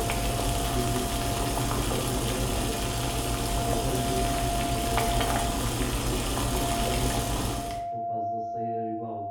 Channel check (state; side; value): identical; both; correlation 1.00